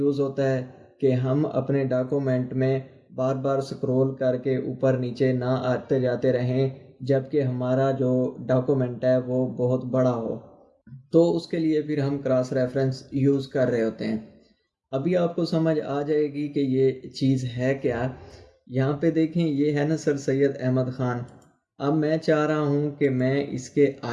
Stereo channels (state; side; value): identical; both; correlation 1.00